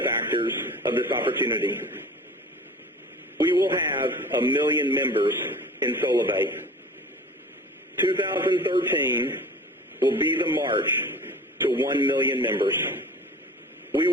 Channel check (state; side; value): normal; both; correlation 0.41